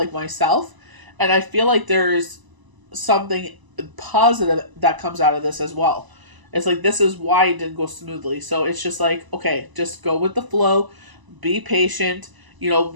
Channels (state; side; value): late; left; 1.0 ms